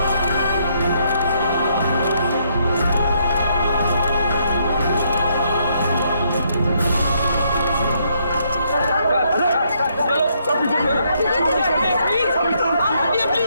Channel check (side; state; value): both; inverted; correlation -0.73